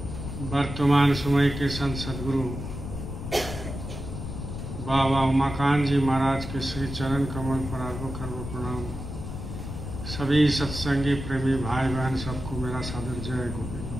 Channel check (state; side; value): noise; left; rumble, 7 dB below the sound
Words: वर्तमान समय के संत सदगुरु बाबा उमाकांत जी महाराज के श्री चरण कमल पर अरबों खरबों प्रणाम। सभी सत्संगी प्रेमी भाई बहन सबको मेरा सादर जय